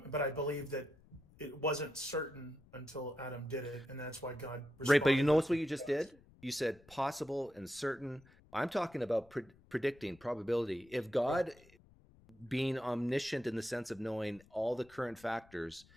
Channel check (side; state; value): left; noise; rumble, 26 dB below the sound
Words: I believe that it wasn't certain until Adam did it, and that's why God Right, but you responded with notice what you just did? You said possible and certain. I'm talking about predicting probability. If right. God, being omniscient in the sense of knowing all the current factors,